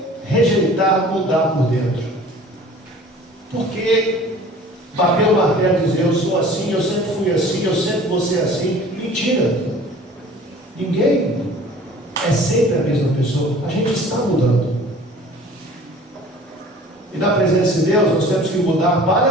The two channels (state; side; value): normal; both; correlation 0.47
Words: rejeitar mudar por dentro? Por que bater o martelo e dizer eu sou assim, eu sempre fui assim, eu sempre vou ser assim? Mentira! Ninguém é sempre a mesma pessoa. A gente está mudando. E na presença de Deus nós temos que mudar